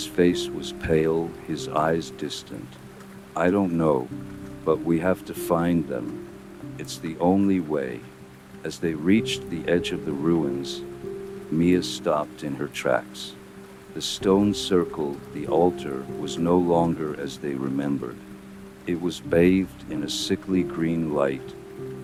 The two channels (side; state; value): both; identical; correlation 1.00